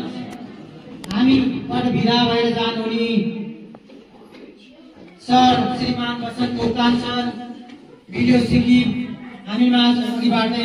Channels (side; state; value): both; identical; correlation 1.00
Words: पद भिरा भएर जानुहुने सर श्रीमान बसन्त मोक्तान सर भिडियो सिक्किम हामीमा